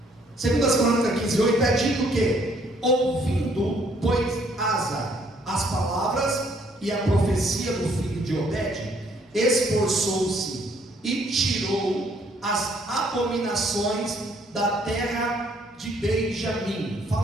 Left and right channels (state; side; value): normal; both; correlation 0.65